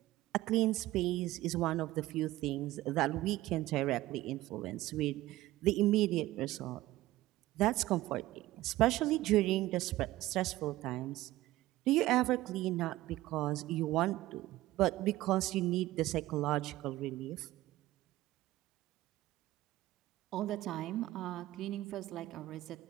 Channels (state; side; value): quieter; left; 16.7 dB